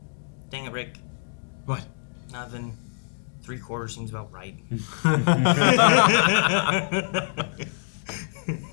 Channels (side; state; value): right; silent; digital silence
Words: Dang it, Rick. What? Nothing. 3/4 seems about right. I